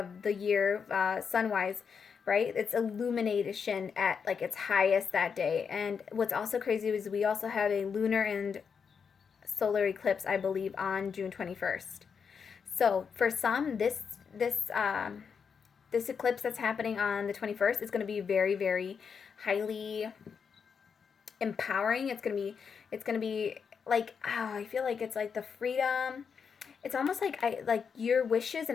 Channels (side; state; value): right; quieter; 6.3 dB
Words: the year, sun-wise. Right? It's illumination at like its highest that day. And what's also crazy is we also have a lunar and solar eclipse, I believe, on June 21st. So for some, this eclipse that's happening on the 21st is going to be very, very highly empowering. It's going to be like, I feel like it's like the freedom. It's almost like your wishes